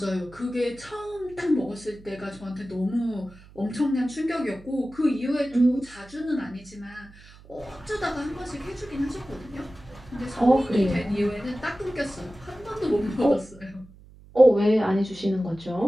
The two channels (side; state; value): right; noise; hum, 22 dB below the sound